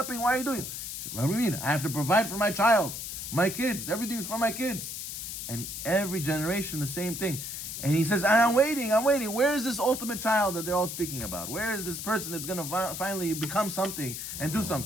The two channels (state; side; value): noise; left; hiss, 7 dB below the sound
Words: Why are you doing? What do you mean? I have to provide for my child, my kids. Everything's for my kids. And every generation, the same thing. And he says, I'm waiting. Where is this ultimate child that they're all speaking about? Where is this person that's going to finally become something and do